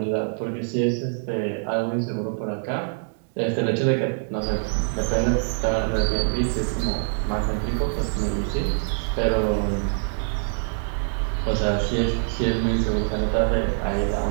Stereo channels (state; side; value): silent; left; digital silence